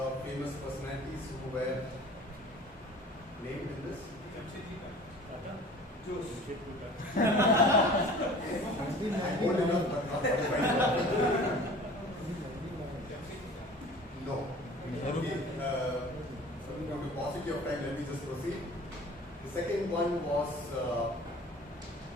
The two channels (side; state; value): both; normal; correlation 0.44